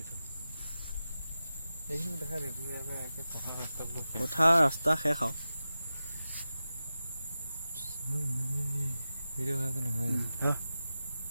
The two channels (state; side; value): inverted; both; correlation -0.93